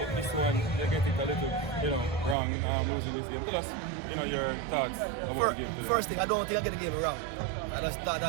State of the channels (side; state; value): left; drops out; at 2.4 s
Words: This one, you get it a little, wrong, losing this game. Tell us, your thoughts about the game today. First thing, I don't think I get the game wrong. I just thought